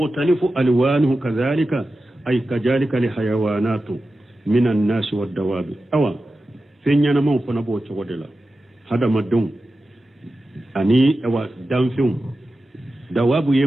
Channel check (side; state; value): both; normal; correlation 0.93